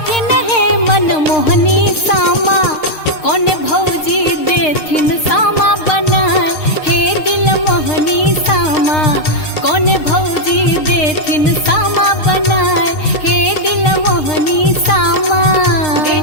है मन मोहनी सामा कौन भौजी देथिन सामा बनाए हे दिल मोहनी सामा कौन भौजी देथिन सामा बनाए हे दिल मोहनी सामा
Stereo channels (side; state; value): right; late; 6.5 ms